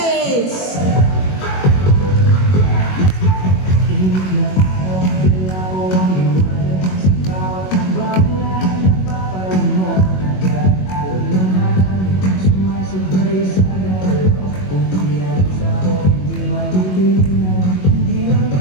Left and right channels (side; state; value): right; late; 21 ms